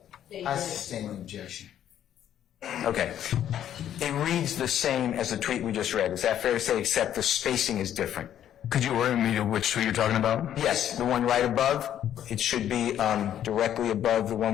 they I sustain an objection. Okay. It reads the same as the tweet we just read. Is that fair to say, except the spacing is different? Could you orient me to which tweet you're talking about? Yes, the one right above. It should be directly above the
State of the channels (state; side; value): quieter; right; 10.7 dB